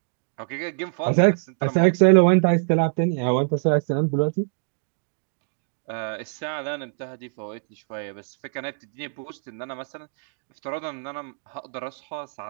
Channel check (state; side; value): silent; left; digital silence